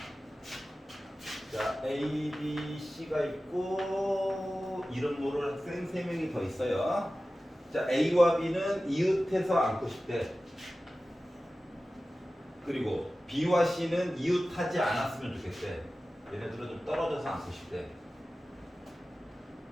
자, A, B, C가 있고 이름 모를 학생 3명이 더 있어요. 자, A와 B는 이웃해서 앉고 싶대. 그리고 B와 C는 이웃하지 않았으면 좋겠대. 얘네들은 좀 떨어져서 앉고 싶대.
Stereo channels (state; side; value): normal; both; correlation 0.95